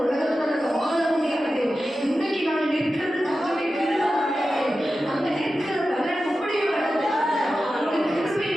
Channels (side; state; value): both; normal; correlation 0.93